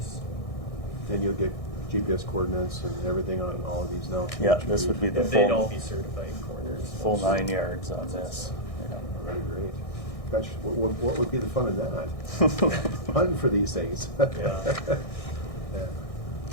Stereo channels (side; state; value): right; late; 1.6 ms